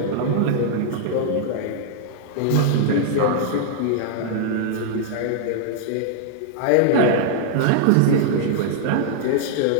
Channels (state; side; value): different; both; correlation -0.01